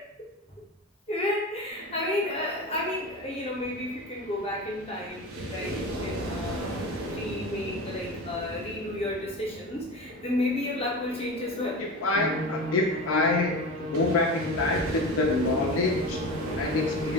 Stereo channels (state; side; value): normal; both; correlation 0.29